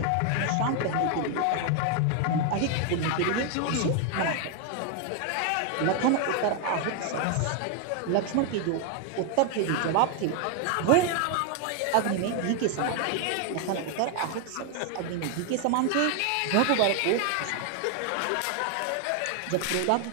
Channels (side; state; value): both; different; correlation 0.01